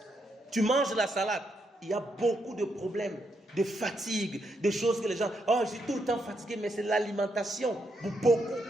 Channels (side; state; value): both; normal; correlation 0.79